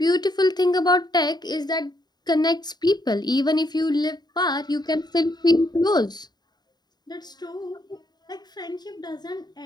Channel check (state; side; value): late; right; 0.20 ms